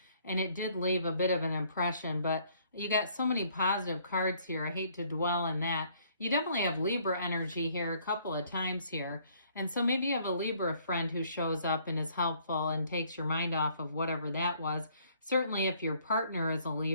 and it did leave a bit of an impression, but you got so many positive cards here. I hate to dwell in that. You definitely have Libra energy here a couple of times here. And so maybe you have a Libra friend who shows up and is helpful and takes your mind off of whatever that was. Certainly if your partner is a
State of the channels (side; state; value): both; inverted; correlation -0.63